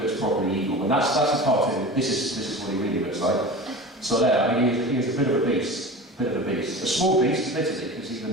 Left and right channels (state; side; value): normal; both; correlation 0.34